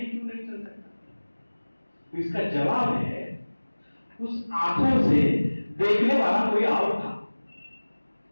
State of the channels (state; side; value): inverted; both; correlation -1.00